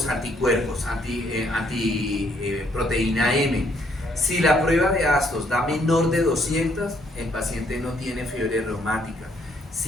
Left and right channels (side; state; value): both; normal; correlation 0.69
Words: anticuerpos, proteína M. Si la prueba de Aston da menor de 200, el paciente no tiene fiebre reumática.